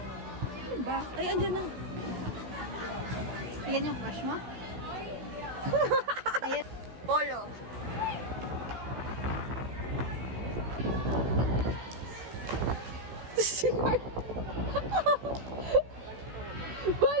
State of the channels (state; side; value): late; left; 16 ms